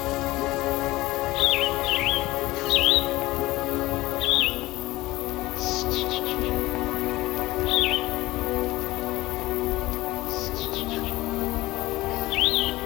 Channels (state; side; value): quieter; right; 18.6 dB